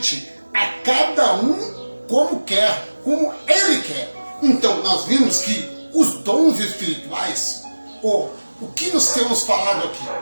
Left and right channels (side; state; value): both; inverted; correlation -1.00